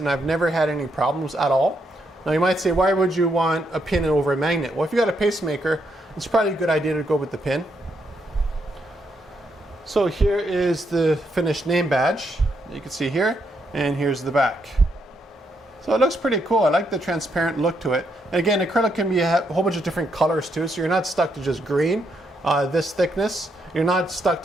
I've never had any problems at all. Now you might say, why would you want a pin over a magnet? Well, if you got a pacemaker, it's probably a good idea to go with the pin. So here is the finished name badge. You can see here, and here's the back. So it looks pretty cool. I like the transparent look to it. And again, acrylic can be a whole bunch of different colors too, so you're not stuck to just green, this thickness. You're not stuck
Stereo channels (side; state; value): both; normal; correlation 0.78